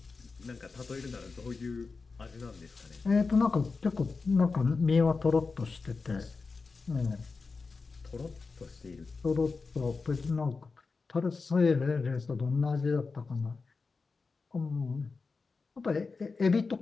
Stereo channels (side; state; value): right; quieter; 4.4 dB